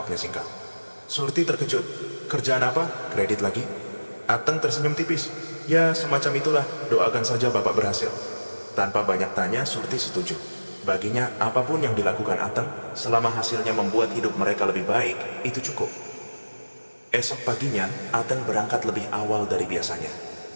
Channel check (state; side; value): inverted; both; correlation -1.00